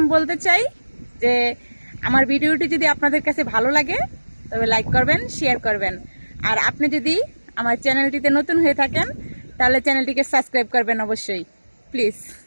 বলতে চাই যে আমার ভিডিওটি যদি আপনাদের কাছে ভালো লাগে তবে লাইক করবেন, শেয়ার করবেন। আর আপনি যদি আমার চ্যানেলটিতে নতুন হয়ে থাকেন তাহলে চ্যানেলটিকে সাবস্ক্রাইব করবেন অবশ্যই, প্লিজ।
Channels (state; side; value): inverted; both; correlation -1.00